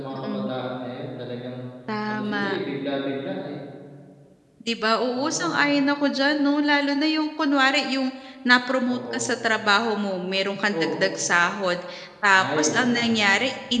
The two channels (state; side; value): identical; both; correlation 1.00